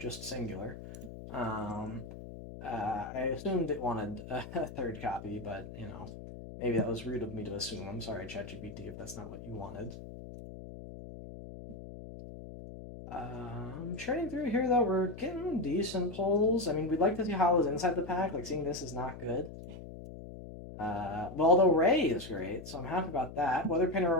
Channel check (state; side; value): noise; left; hum, 12 dB below the sound